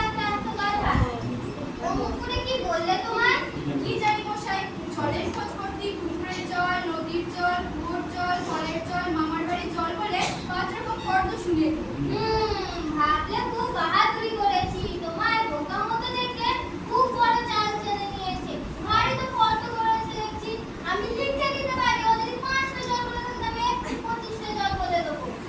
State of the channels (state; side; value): identical; both; correlation 1.00